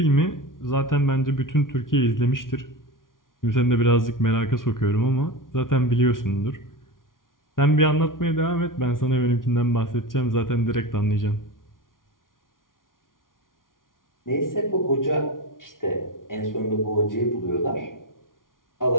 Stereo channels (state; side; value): late; right; 0.89 ms